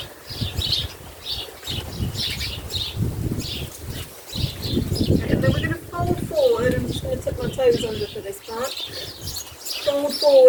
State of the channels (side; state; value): both; identical; correlation 1.00